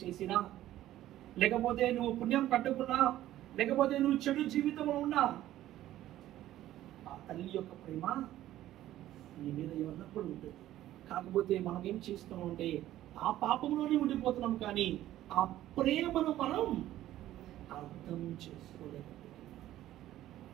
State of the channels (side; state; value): left; quieter; 13.8 dB